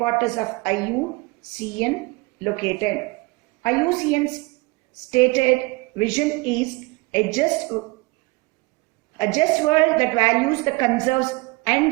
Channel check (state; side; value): quieter; left; 24.8 dB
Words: of IUCN located? IUCN's stated vision is a just world that values the conserves